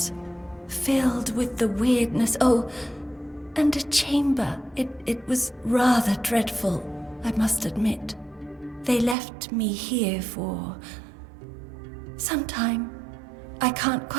filled with the weirdness. Oh, and a chamber. It was rather dreadful, I must admit. They left me here for some time. I can't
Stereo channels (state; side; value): drops out; left; at 9.2 s